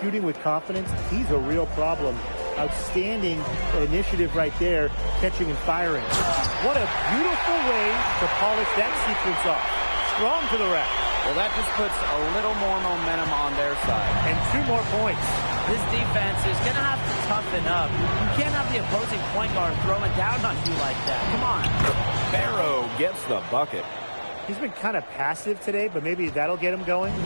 with confidence, he's a real problem. Outstanding initiative right there, catching and firing. What a beautiful way to polish that sequence off. Strong to the rack. Well, that just puts a little more momentum on their side. And 2 more points. This defense is going to have to toughen up. You can't have the opposing point guard throwing down on you like that. Come on. Barrow gets the bucket. He's been kind of passive today, but maybe that'll get him going.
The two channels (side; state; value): both; inverted; correlation -1.00